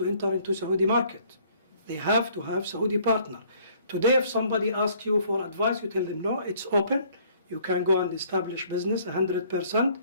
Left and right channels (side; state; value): both; inverted; correlation -0.60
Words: enter into Saudi market. They have to have Saudi partner. Today, if somebody asks you for advice, you tell them, no, it's open. You can go and establish business 100%.